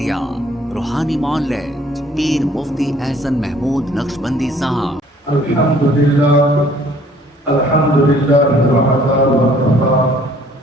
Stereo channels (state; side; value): normal; both; correlation 0.58